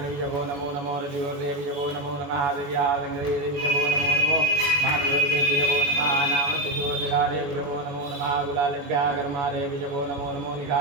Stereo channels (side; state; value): left; late; 21 ms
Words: नमो नमो रजोर्देविजवो नमो नमः दिव्यादेविजवो नमो नमो महादेवदेविजवो नमः नामशोधिकादेविजवो नमो नमः गुलालेभ्यः कर्मादेविजवो नमो नमो